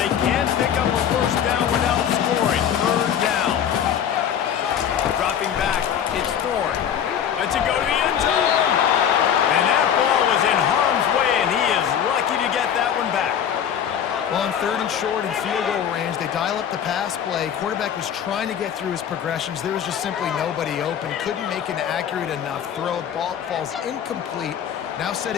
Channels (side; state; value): right; quieter; 9.0 dB